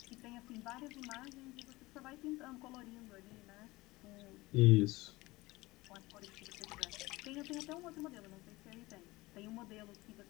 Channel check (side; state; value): right; quieter; 20.6 dB